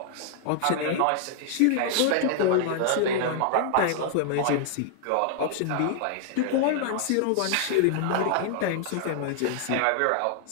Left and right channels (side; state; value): both; different; correlation 0.00